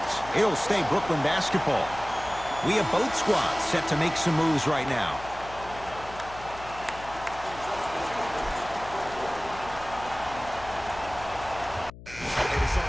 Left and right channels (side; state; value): left; noise; hum, 16 dB below the sound